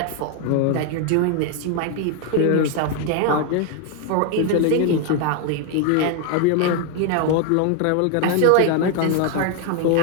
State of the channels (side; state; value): both; different; correlation 0.01